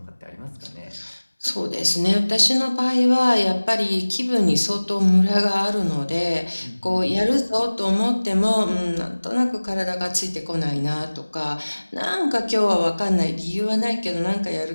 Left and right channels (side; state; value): both; inverted; correlation -1.00